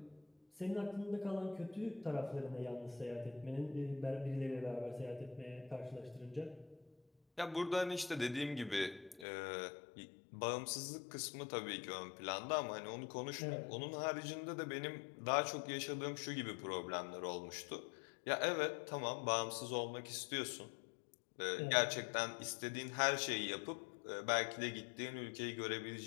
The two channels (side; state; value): right; drops out; at 9.2 s